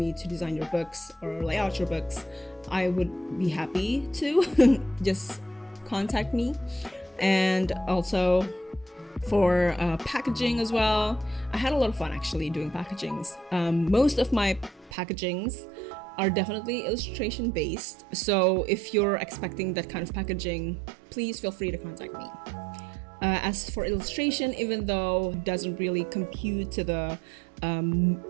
to design your books or lay out your books, I would be happy to. Just contact me. And also for packaging as well, I had a lot of fun actually doing packagings. Most of my packagings are definitely illustration based, so if you're expecting that kind of packaging, please feel free to contact me. As for illustration, even though it doesn't really compute to the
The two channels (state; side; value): drops out; left; at 14.9 s